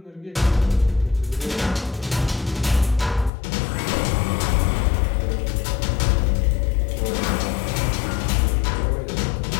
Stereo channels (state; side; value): drops out; right; at 3.3 s